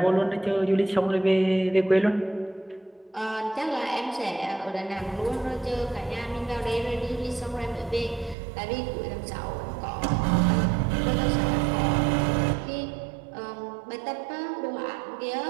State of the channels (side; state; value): left; drops out; at 8.3 s